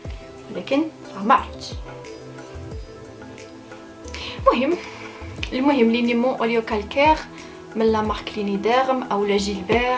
ولكن ما عرفتش. المهم لينيمون اوليو كالكير من لا مارك لينيديرم او لا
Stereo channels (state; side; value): identical; both; correlation 1.00